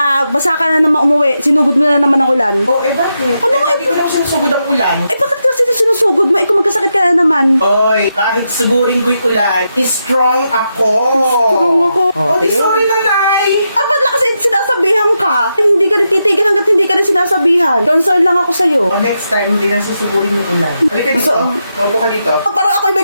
basa ka na naman umuwi, sinugod mo na naman ang ulan. Oh, bakit? Ano nga Hindi ko naman sinusugod ang ulan. Bakit kasi sinusugod mo? Kung magkasakit ka na naman. Oy, kahit sugurin ko'y ulan, strong ako. Strong ako. Oh, sige. sorry nanay. Ba't lang kasi sinasabihan ka? Hindi ka rin titigil hanggat hindi ka rin sinasabihan. Concern lang ako sa'yo. Oh, next time, hindi na susugurin yung ulan. Halika dito. Maupo ka dito. Parang ako'y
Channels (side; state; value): both; inverted; correlation -0.85